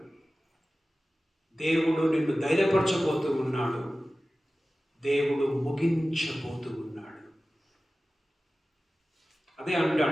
దేవుడు నిన్ను ధైర్యపరచబోతూ ఉన్నాడు. దేవుడు ముగించబోతూ ఉన్నాడు. అదే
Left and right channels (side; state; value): both; normal; correlation 0.96